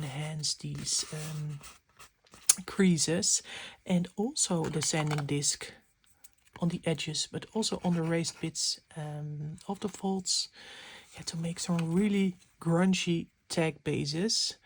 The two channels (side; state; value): both; identical; correlation 1.00